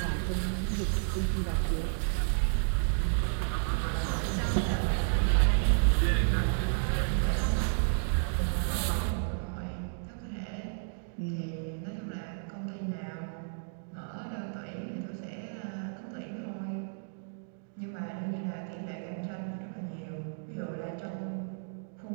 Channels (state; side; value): silent; left; digital silence